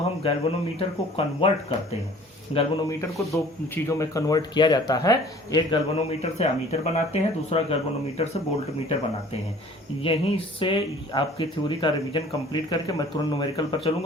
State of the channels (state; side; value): normal; both; correlation 0.50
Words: हम गैल्वेनोमीटर को कन्वर्ट करते हैं, गैल्वेनोमीटर को दो चीज़ों में कन्वर्ट किया जाता है, एक गैल्वेनोमीटर से अमीटर बनाते हैं, दूसरा गैल्वेनोमीटर से वोल्टमीटर बनाते हैं। यहीं से आपकी थ्योरी का रिवीजन कंप्लीट करके मैं तुरंत न्यूमेरिकल पर